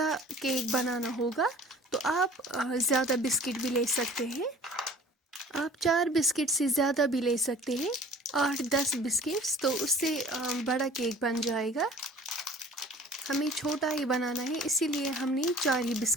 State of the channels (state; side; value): normal; both; correlation 0.48